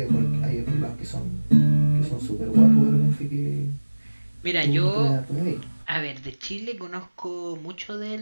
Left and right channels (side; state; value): both; inverted; correlation -1.00